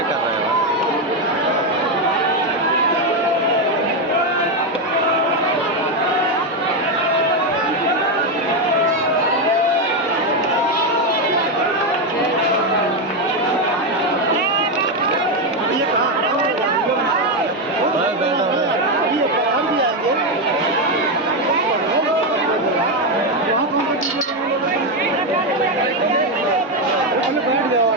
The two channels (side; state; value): both; normal; correlation 0.07